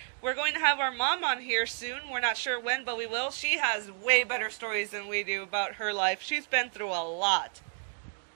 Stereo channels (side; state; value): left; silent; 57 dB below the other